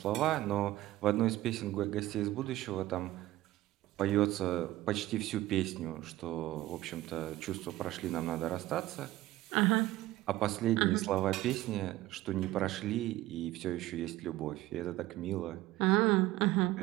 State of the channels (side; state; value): left; quieter; 16.3 dB